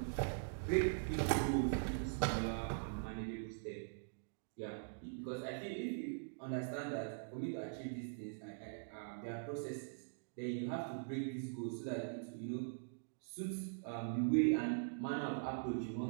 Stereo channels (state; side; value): silent; left; digital silence